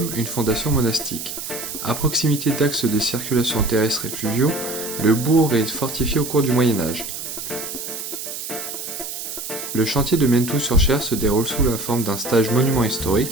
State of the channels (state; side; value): noise; right; hiss, 7 dB below the sound